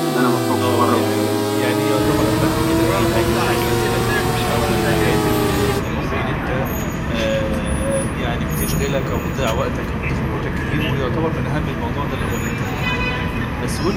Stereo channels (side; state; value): both; identical; correlation 1.00